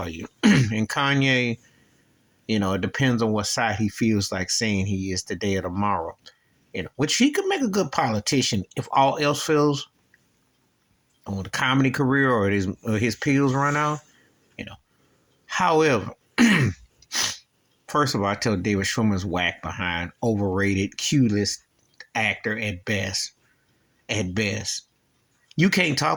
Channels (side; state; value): both; identical; correlation 1.00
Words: you?" And Kanye, it depends on what side he feels like saying he is today or tomorrow. Which he could make a good politician if all else fails on the comedy career or his pills run out. You know. However, first of all, I tell David Schwimmer's whack behind, overrated, Q-list actor at best. At best. You can't